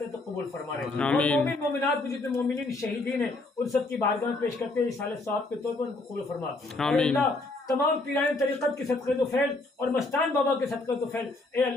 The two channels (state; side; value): quieter; right; 3.0 dB